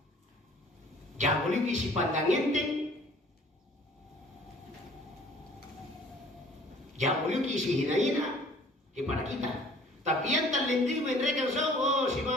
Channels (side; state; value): both; normal; correlation 0.52